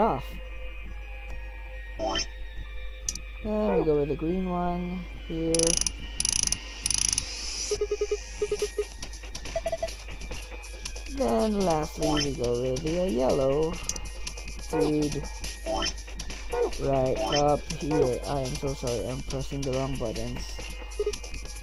Then we go with the green one here. Then lastly we go with the yellow dude right up here. I am so sorry, I'm pressing the wrong buttons.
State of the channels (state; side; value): identical; both; correlation 1.00